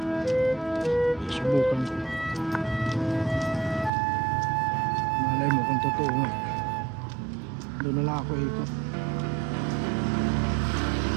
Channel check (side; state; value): left; drops out; at 3.9 s